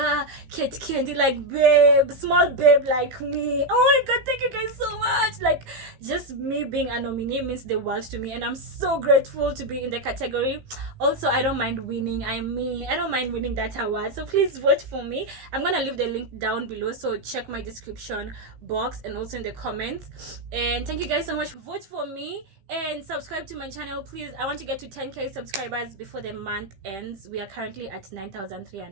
Kate Candy, like, babe, small babe like me. Oh my god, thank you guys so much. Like, just me being a nominee means the world to me, and I'm so grateful to be in the category. Also, I don't mind winning. I don't mind winning that award, so please vote for me. I'm gonna leave the link down below, so check my description box and also in the comments. And thank you guys so much. Vote for me and subscribe to my channel, please. I want to get to 10k subscribers before the month ends. We are currently at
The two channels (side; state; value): left; late; 15 ms